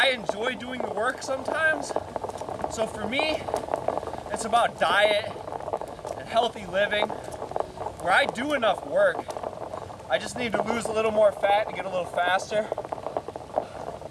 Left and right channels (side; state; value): both; identical; correlation 1.00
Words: enjoy doing the work sometimes. So for me, it's about diet and healthy living, where I do enough work. I just need to lose a little more fat to get a little faster.